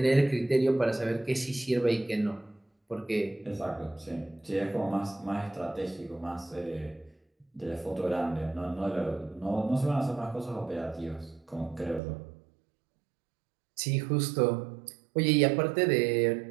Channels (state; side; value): drops out; left; at 12.0 s